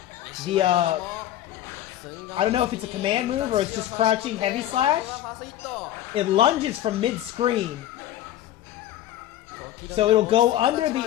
I don't know if it's a command move or it's just crouching heavy slash. It lunges from mid-screen. So it'll go under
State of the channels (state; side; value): quieter; right; 12.7 dB